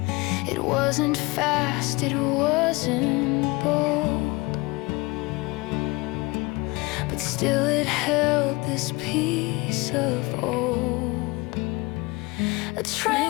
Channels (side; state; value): right; quieter; 24.4 dB